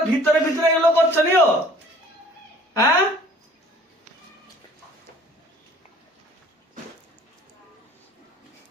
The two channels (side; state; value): both; normal; correlation 0.52